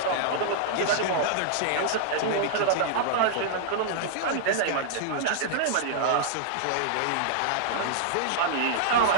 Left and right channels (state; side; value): different; both; correlation -0.01